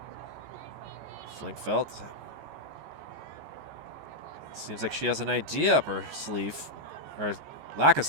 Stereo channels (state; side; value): late; left; 14 ms